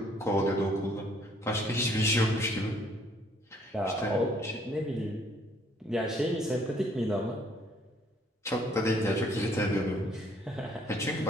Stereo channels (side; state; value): both; normal; correlation 0.63